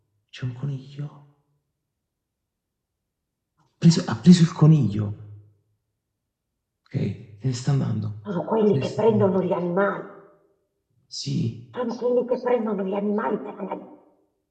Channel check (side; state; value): both; identical; correlation 1.00